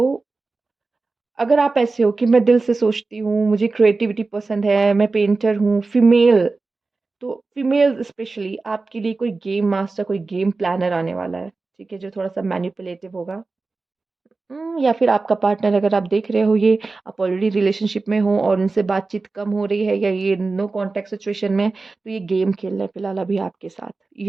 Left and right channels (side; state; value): left; quieter; 3.8 dB